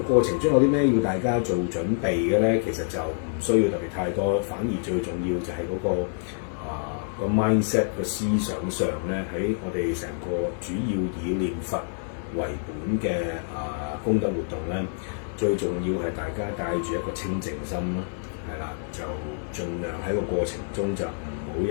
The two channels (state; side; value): silent; right; digital silence